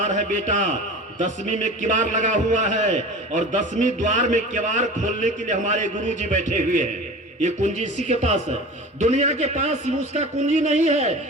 है बेटा, 10वीं में किवाड़ लगा हुआ है, और 10वीं द्वार में किवाड़ खोलने के लिए हमारे गुरु जी बैठे हुए हैं। ये कुंजी इसी के पास है, दुनिया के पास उसका कुंजी नहीं है।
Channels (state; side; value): normal; both; correlation 0.36